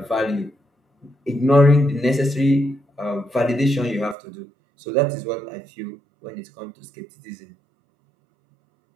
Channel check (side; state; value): left; drops out; at 4.2 s